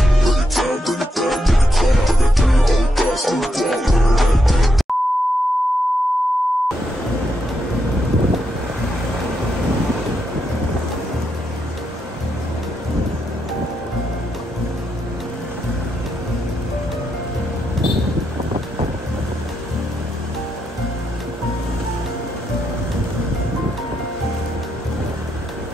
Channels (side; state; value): both; normal; correlation 0.81